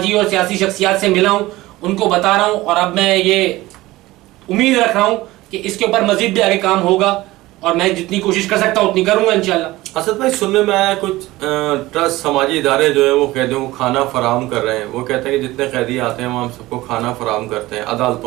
اور سیاسی شخصیات سے ملا ہوں، ان کو بتا رہا ہوں، اور اب میں یہ امید رکھ رہا ہوں کہ اس کے اوپر مزید بھی آگے کام ہوگا، اور میں جتنی کوشش کر سکتا ہوں اتنی کروں گا انشاءاللہ۔ اسد بھائی، سننے میں آیا کچھ ٹرسٹ سماجی ادارے جو ہیں وہ قیدیوں کو کھانا فراہم کر رہے ہیں، وہ کہتے ہیں کہ جتنے قیدی آتے ہیں وہ ہم سب کو کھانا فراہم کرتے ہیں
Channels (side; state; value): left; quieter; 18.4 dB